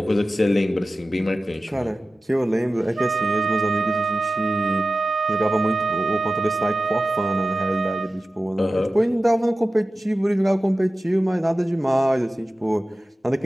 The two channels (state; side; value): normal; both; correlation 0.95